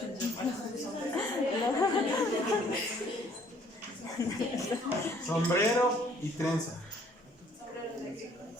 Sombrero y trenza.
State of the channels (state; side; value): normal; both; correlation 0.60